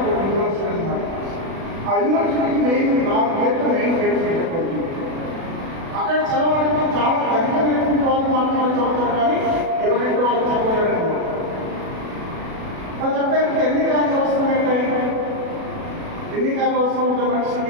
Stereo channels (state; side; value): late; left; 36 ms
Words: యూనివర్సిటీ అన్నమాట. ఆ యూనివర్సిటీకి మెయిన్ 4 గేట్లు మెయిన్ గేట్స్ పెట్టుకోవచ్చు. అక్కడ చదవడానికి చాలా ధనికమైనటువంటి వాళ్ళు మాత్రమే చదువుతారు, కానీ ఎవరింటి వాళ్ళు చదవలేరు. ప్రతి ఒక్కరికి ఎన్ని కాలం అవసరం ఏంటాయి? ఎన్ని కాలం అవసరం ఉంటే